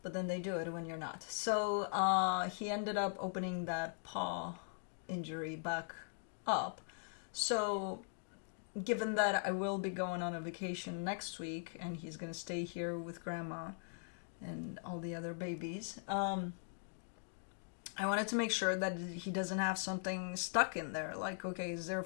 but then they do it when you're not. So he ended up opening that paw injury back up. So given that I will be going on a vacation next week and he's going to stay here with grandma and all the other babies, I wanted to make sure that he doesn't have something stuck in there. Like, okay, is there a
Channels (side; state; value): right; silent; digital silence